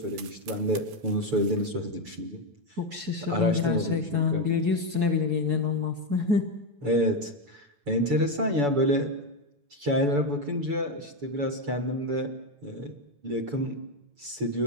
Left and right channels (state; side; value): late; left; 9.2 ms